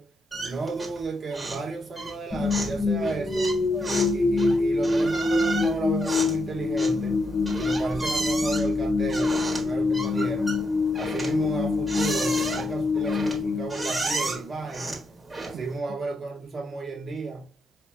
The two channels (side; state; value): both; normal; correlation 0.81